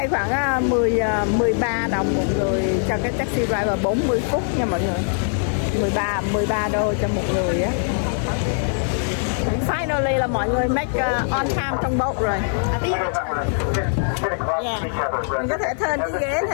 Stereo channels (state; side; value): silent; right; 58 dB below the other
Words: khoảng 13 đồng một người cho cái taxi driver 40 phút nha mọi người. 13 đô cho một người á. Finally là mọi người make on time trong boat rồi. Yeah. Mình có thể turn cái ghế